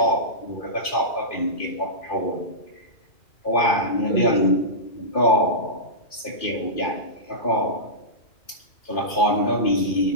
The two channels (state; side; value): late; right; 2.5 ms